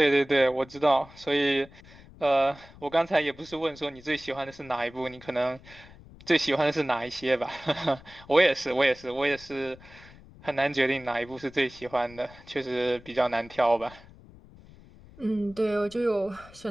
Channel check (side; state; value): left; noise; rumble, 21 dB below the sound